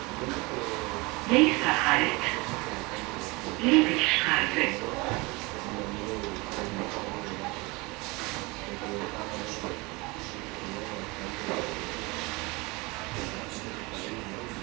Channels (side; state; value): left; quieter; 25.1 dB